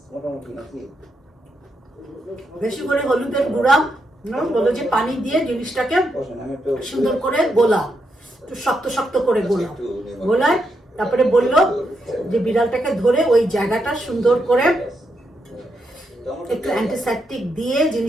বেশি করে হলুদের গুঁড়া বললো যে পানি দিয়ে জিনিসটাকে সুন্দর করে গোলাও, একটু শক্ত শক্ত করে গোলাও। গোলায় তারপরে বললো যে বিড়ালটাকে ধরে ওই জায়গাটা সুন্দর করে একটু অ্যান্টিসেপটিক দিয়ে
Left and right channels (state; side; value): normal; both; correlation 0.82